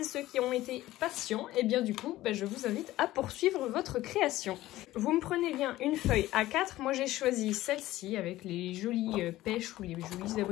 ceux qui ont été patients, et bien du coup, je vous invite à poursuivre votre création. Vous me prenez bien une feuille A4. Moi j'ai choisi celle-ci avec les jolies pêches ou les jolis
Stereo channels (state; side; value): quieter; right; 16.1 dB